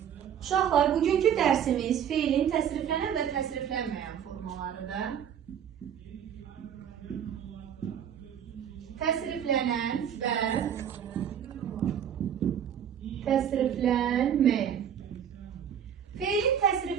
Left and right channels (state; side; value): quieter; left; 8.8 dB